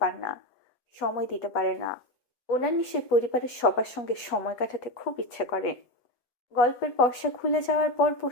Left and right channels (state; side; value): late; right; 8.2 ms